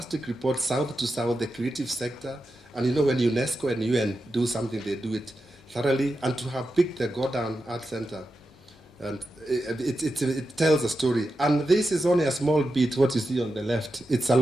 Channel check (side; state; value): both; normal; correlation 0.90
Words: report, south to south, the creative sector. And when UNESCO and UN do something, they do it thoroughly. And to have picked the Go Down Art Center And it tells a story. And this is only a small bit, what you see on the left. It's a